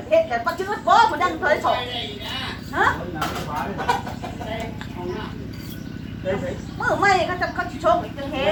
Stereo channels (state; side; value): identical; both; correlation 1.00